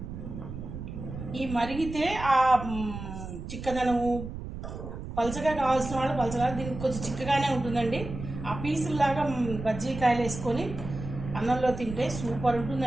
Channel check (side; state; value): right; noise; rumble, 9 dB below the sound